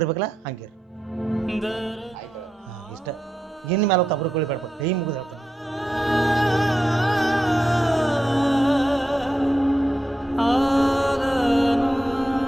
ಹಂಗಿರ್. ಆಯ್ತು. ಇಷ್ಟ ಇನ್ನು ಮೇಲೆ ತಬ್ರು ಕೊಳಿಬೇಡ, ಕೈ ಮುಗಿದು ಹೇಳ್ತಾನೆ.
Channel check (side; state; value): both; normal; correlation 0.86